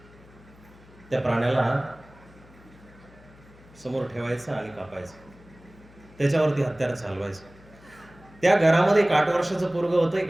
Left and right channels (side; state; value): left; noise; hum, 24 dB below the sound